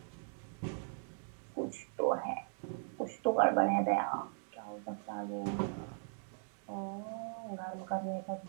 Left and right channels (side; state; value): left; silent; digital silence